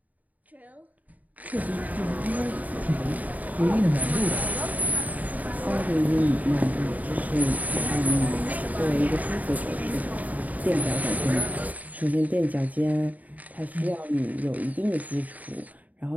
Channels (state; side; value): late; left; 0.075 ms